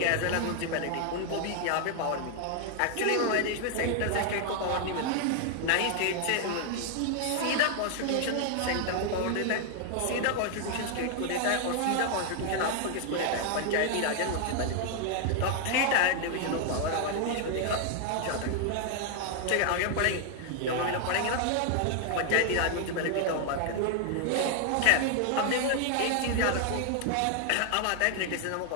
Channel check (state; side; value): different; both; correlation 0.00